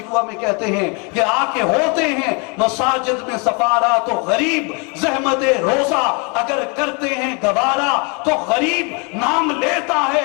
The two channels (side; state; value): right; quieter; 32.9 dB